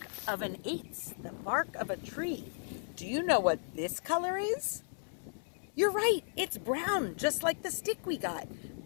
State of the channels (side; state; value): right; silent; 54 dB below the other